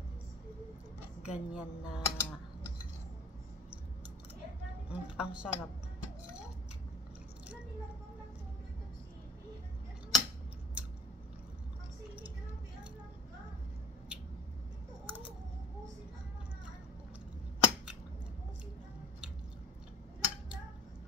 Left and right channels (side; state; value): both; normal; correlation 0.45